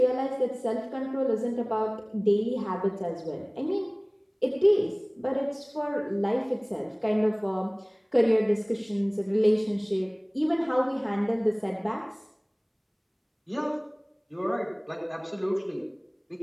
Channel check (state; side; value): identical; both; correlation 1.00